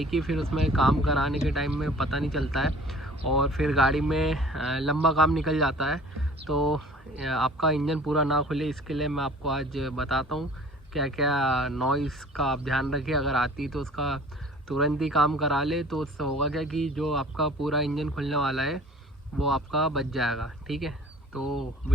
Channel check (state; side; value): normal; both; correlation 0.48